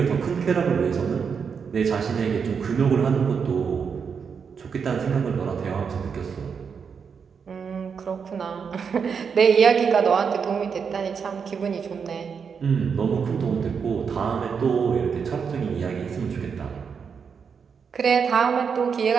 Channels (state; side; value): quieter; left; 6.3 dB